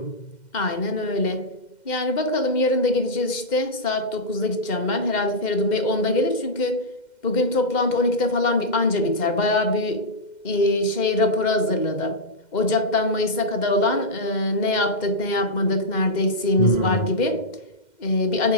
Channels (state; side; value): late; right; 2.1 ms